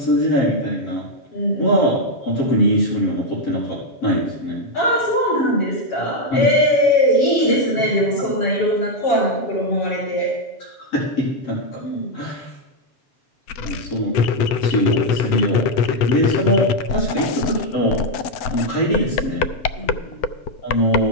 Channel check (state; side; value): late; right; 7.9 ms